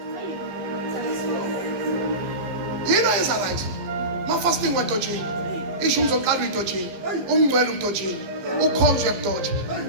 You know it's right. My fasting went to jail. Ishu mzoqala uyidojini. Umngcwele udojini. Ukhonzo yabudoja.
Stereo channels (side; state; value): left; late; 15 ms